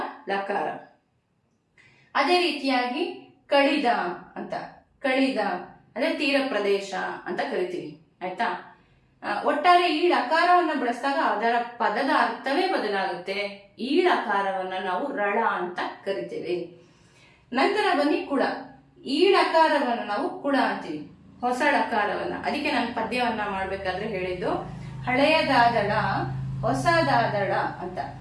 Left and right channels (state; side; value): identical; both; correlation 1.00